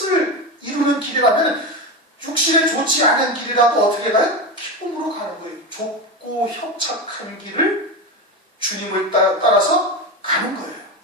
이루는 길이라면 육신에 좋지 않은 길이라도 어떻게 가요? 기쁨으로 가는 거예요. 좁고 협착한 길을 주님을 따라서 가는 거예요.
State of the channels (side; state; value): both; normal; correlation 0.19